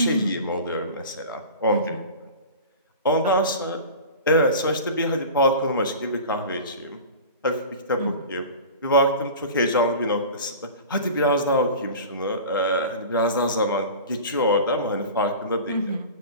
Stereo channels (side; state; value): both; inverted; correlation -0.36